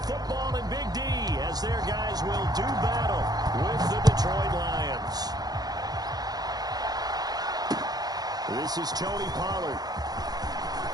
football in Big D as their guys will do battle with the Detroit Lions. This is Tony Pollard.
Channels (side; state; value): left; late; 0.19 ms